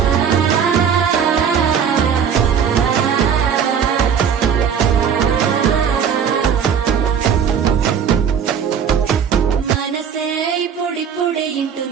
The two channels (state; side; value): quieter; left; 7.5 dB